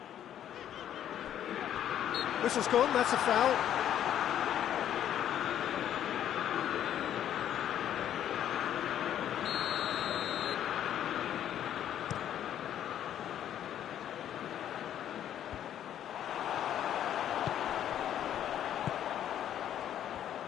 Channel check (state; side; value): quieter; right; 10.6 dB